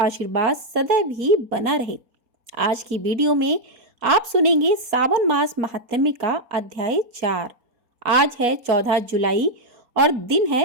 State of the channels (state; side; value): late; left; 4.2 ms